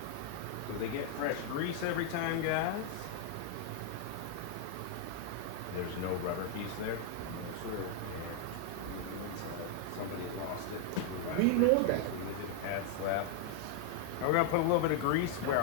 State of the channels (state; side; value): different; both; correlation 0.00